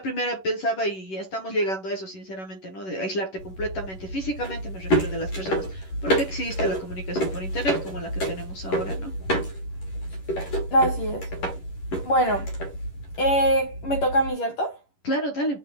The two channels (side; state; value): right; late; 11 ms